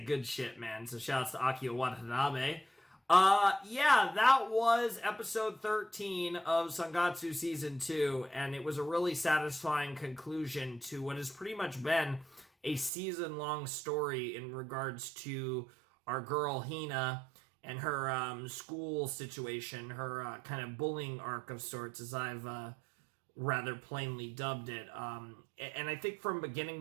Good shit, man. So shouts to Akio Watanabe. Yeah, that was episode 13 of Sangatsu Season 2, and it was a really satisfying conclusion to what has pretty much been a season-long story in regards to our girl Hina and her school situation, her kind of bullying arc of sorts, as I've rather plainly dubbed it. And I think from beginning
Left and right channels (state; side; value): drops out; left; at 12.9 s